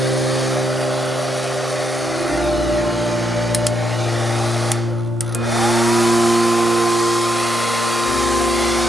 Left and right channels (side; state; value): both; normal; correlation 0.77